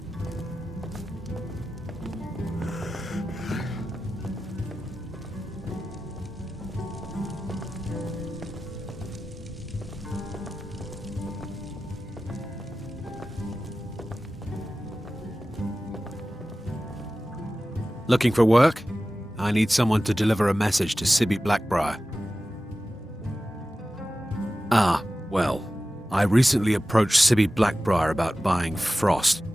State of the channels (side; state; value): both; normal; correlation 0.95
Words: Looking for work? I need someone to deliver a message to Sibby Blackbriar. Ah, well, I recently approached Sibby Blackbriar about buying Frost,